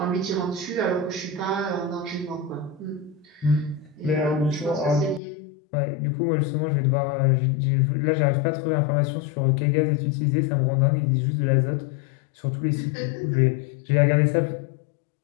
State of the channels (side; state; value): right; drops out; at 5.2 s